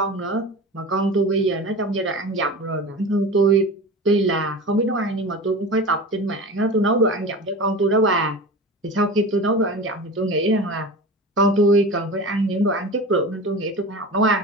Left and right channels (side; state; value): both; normal; correlation 0.31